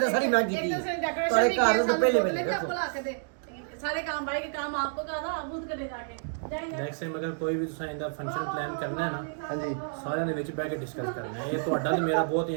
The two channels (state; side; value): silent; left; digital silence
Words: सारी मैं की थी है। सारे घर तो पहले पहले सारे काम भाई के काम आपको कहा था, आप खुद करे जाके जाएंगे। नेक्स्ट टाइम अगर कोई भी तुसा इंदा फंक्शन प्लान करना है ना, हाँ जी, ਸਾਰਿਆਂ ਦੇ ਵਿੱਚ ਬਹਿ ਕੇ ਡਿਸਕਸ ਕਰਨਾ ਹੈ। ਇਹ ਤੁਹਾਡਾ ਤੇ ਮੇਰਾ ਬਹੁਤ